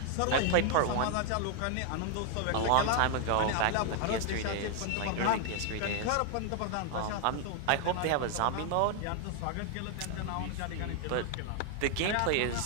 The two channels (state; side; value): different; both; correlation 0.00